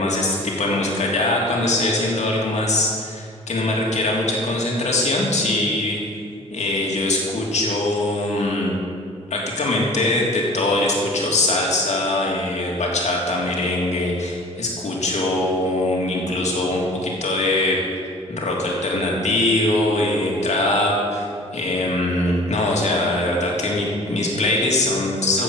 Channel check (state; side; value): normal; both; correlation 0.43